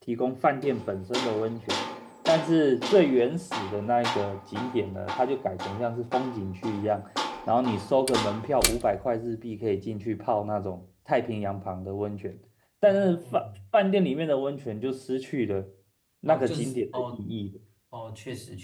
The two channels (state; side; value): identical; both; correlation 1.00